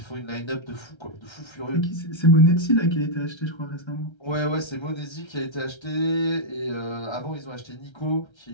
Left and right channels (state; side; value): late; right; 1.3 ms